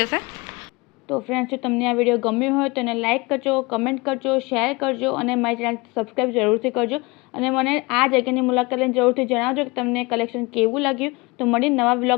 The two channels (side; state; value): right; quieter; 25.2 dB